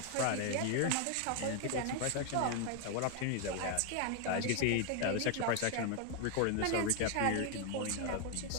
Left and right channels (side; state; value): both; different; correlation 0.00